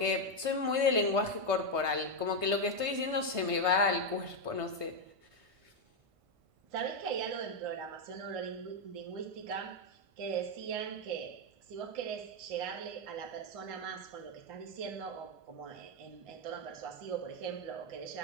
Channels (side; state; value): left; late; 1.5 ms